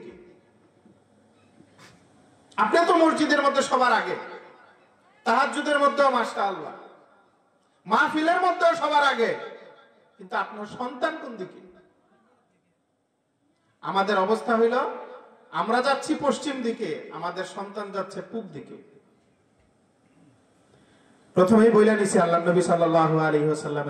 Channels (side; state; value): both; identical; correlation 1.00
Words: আপনি তো মসজিদের মধ্যে সবার আগে, তাহাজ্জুদের মধ্যেও মাশাআল্লাহ, মাহফিলের মধ্যেও সবার আগে, কিন্তু আপনার সন্তান কোন দিকে? আমাদের অবস্থা হইল আমরা যাচ্ছি পশ্চিম দিকে, আমাদের সন্তান যাচ্ছে পূব দিকে। প্রথমেই বইলা নিছি আল্লাহ নবী সাল্লাল্লাহু আলাইহি